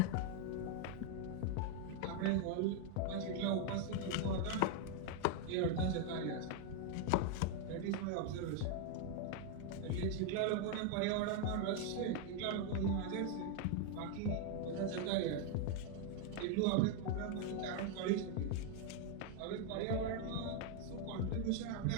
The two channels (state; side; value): different; both; correlation 0.01